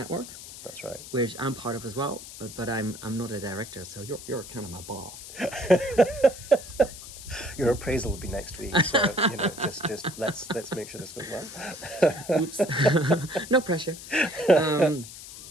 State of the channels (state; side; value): noise; left; hiss, 14 dB below the sound